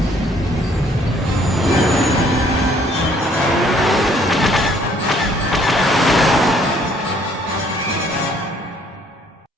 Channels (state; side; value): normal; both; correlation 0.62